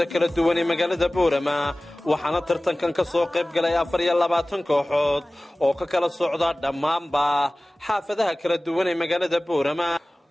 kala duwan ee magaalada boorama waxaana tartankan ka soo qayb galay 24 kooxood oo ka kala socda dhammaanba xaafadaha kala duwan ee magaalada boorama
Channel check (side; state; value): both; normal; correlation 0.98